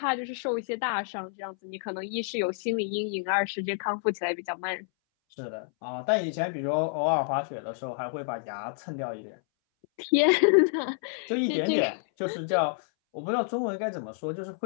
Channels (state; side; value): silent; right; 59 dB below the other